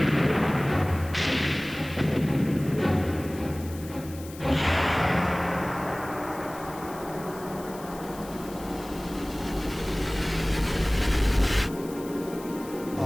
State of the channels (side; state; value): left; noise; hiss, 18 dB below the sound